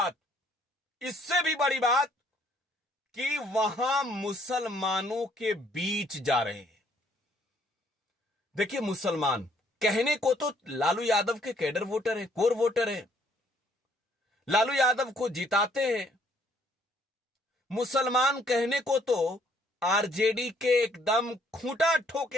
बड़ी बात कि वहां मुसलमानों के बीच जा रहे हैं। देखिए, मुसलमान कहने को तो लालू यादव के कैडर वोटर है, कोर वोटर है, लालू यादव को जिताते हैं। मुसलमान कहने को तो आरजेडी के एकदम खूंटा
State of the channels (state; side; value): normal; both; correlation 0.65